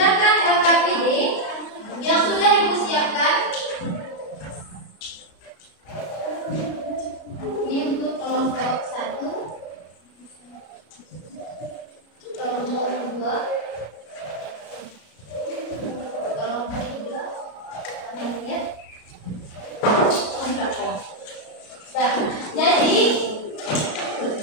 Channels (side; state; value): right; late; 33 ms